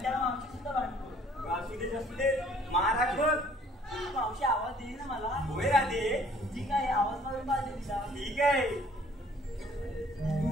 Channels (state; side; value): normal; both; correlation 0.58